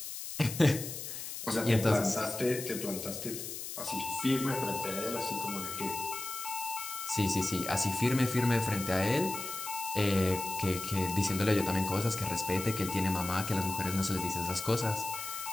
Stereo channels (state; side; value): noise; left; hiss, 7 dB below the sound